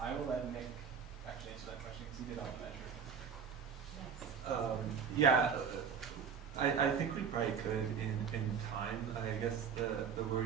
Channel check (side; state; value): left; quieter; 6.9 dB